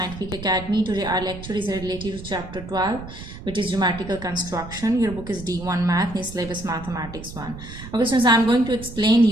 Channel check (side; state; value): right; noise; rumble, 13 dB below the sound